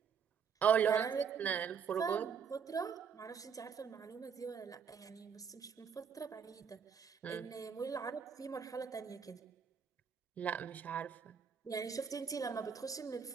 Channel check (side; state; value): left; quieter; 6.8 dB